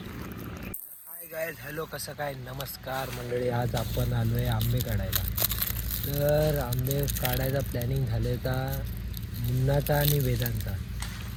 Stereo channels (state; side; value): identical; both; correlation 1.00